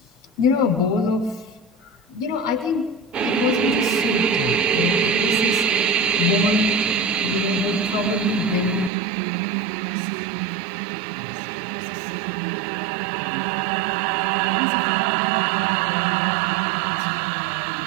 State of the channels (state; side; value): drops out; left; at 8.9 s